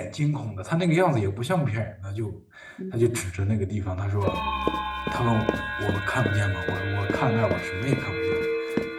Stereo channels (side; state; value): both; identical; correlation 1.00